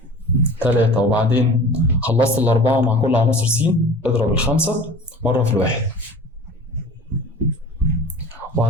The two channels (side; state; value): both; normal; correlation 0.41